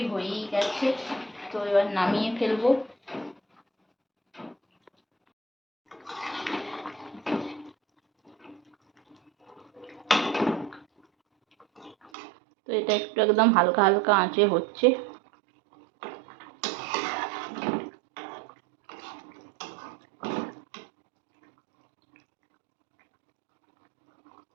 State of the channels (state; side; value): drops out; left; at 12.1 s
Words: হয়েই গেছে, তো এবার নামিয়ে ফেলবো। তো এটা একটু একদম হালকা হালকা আঁচে হচ্ছে।